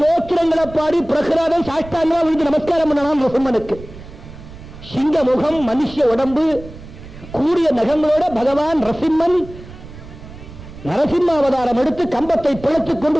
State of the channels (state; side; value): noise; right; rumble, 16 dB below the sound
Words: பாடி பிரகலாதன் சாஷ்டாங்கமா விழுந்து நமஸ்காரம் பண்ணலாம் நரசிம்மனுக்கு. சிங்க முகம், மனுஷ உடம்பு, கூடிய நகங்களோட பகவான் நரசிம்மன் நரசிம்ம அவதாரம் எடுத்து கம்பத்தை பிழைத்துக் கொண்டு